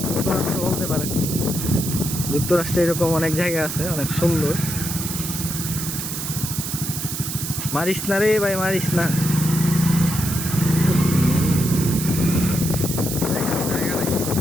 যুক্তরাষ্ট্র বলতে পারেন। যুক্তরাষ্ট্রে এরকম অনেক জায়গা আছে, অনেক সুন্দর। মারিস না রে ভাই, মারিস না।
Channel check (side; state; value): right; noise; hiss, 5 dB below the sound